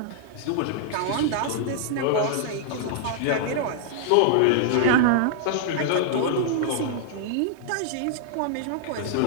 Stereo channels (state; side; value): different; both; correlation -0.01